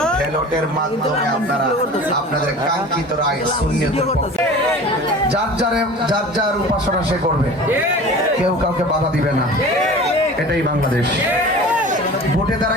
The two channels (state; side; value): normal; both; correlation 0.39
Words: ব্যালটের মাধ্যমে আপনারা আপনাদের কাঙ্ক্ষিত রায় সুন্নিয়তের পক্ষে যার যার উপাসনা সে করবে, কেউ কাউকে বাধা দিবে না। এটাই বাংলাদেশ। ভোটে